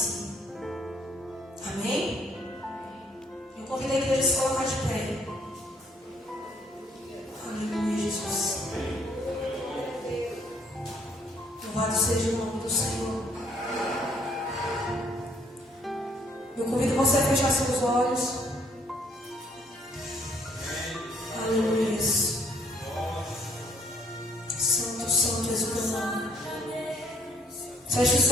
Amém? Eu convido a igreja a se colocar de pé. Aleluia, Jesus. Louvado seja o nome do Senhor. Eu convido você a fechar seus olhos. Aleluia. Santo, santo és o teu nome. Feche os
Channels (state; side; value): normal; both; correlation 0.66